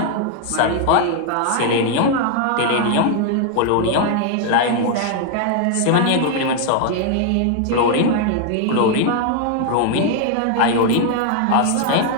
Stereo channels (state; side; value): different; both; correlation 0.00